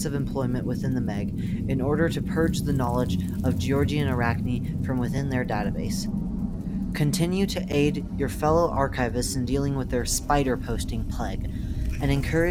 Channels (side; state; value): both; identical; correlation 1.00